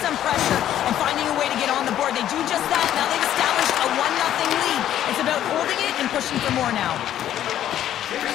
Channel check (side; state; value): right; quieter; 11.4 dB